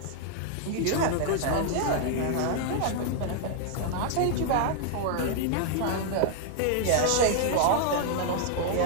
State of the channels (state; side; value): different; both; correlation -0.01